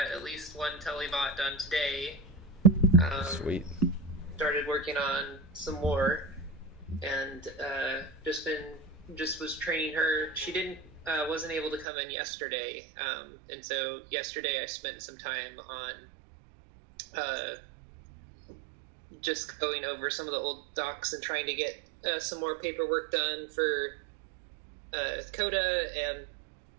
at least one telebot done today. Sweet. Started working on some more, and just was training her. She wasn't able to come in yesterday, and so yesterday I spent some time on just going over some of the old docs and trying to get some more paperwork done for Coda, and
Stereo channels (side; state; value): left; drops out; at 11.9 s